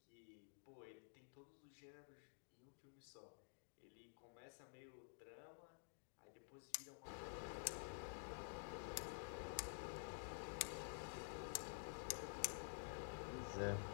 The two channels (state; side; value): silent; right; digital silence